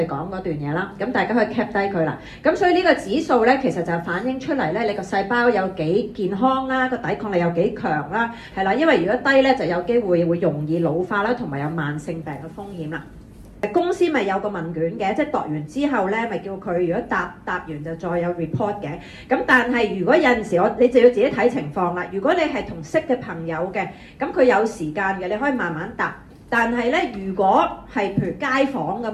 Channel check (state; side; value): identical; both; correlation 1.00